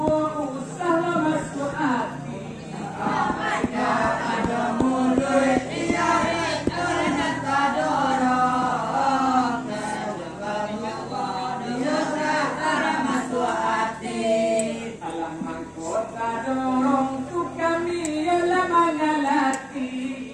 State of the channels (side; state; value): both; identical; correlation 1.00